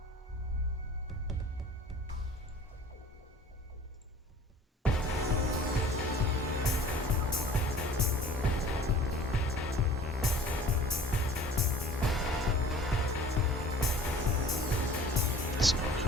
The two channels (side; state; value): both; normal; correlation 0.47